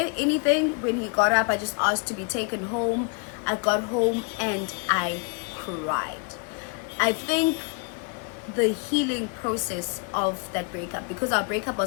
anything when he got up. I just asked to be taken home. I got home and I cried. I think the healing process of that breakup, because our breakup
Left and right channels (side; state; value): right; quieter; 35.8 dB